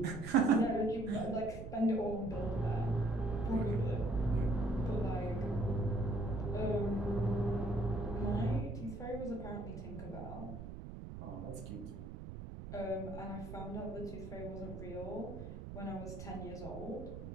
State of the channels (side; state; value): right; noise; rumble, 10 dB below the sound